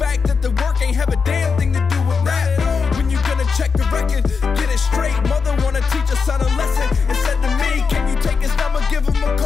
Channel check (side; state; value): right; quieter; 5.3 dB